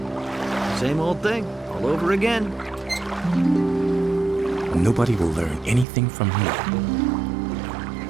Same old thing, all over again. Nobody will learn anything from him.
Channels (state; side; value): drops out; left; at 5.9 s